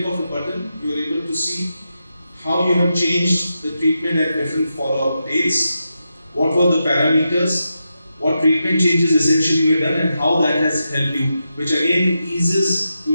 of a button, you are able to see how you have changed the treatment at different follow-up dates, what were the parameters, what treatment changes essentially were done, and how that has helped you, which again eases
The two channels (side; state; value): both; inverted; correlation -0.87